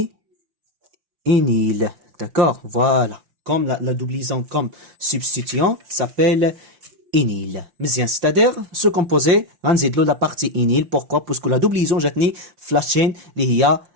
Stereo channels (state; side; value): late; left; 5.8 ms